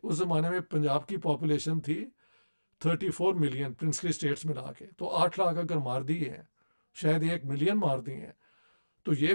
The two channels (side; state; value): both; inverted; correlation -1.00